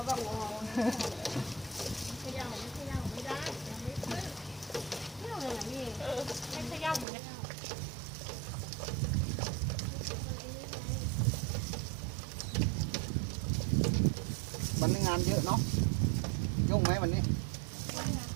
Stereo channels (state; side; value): drops out; left; at 7.1 s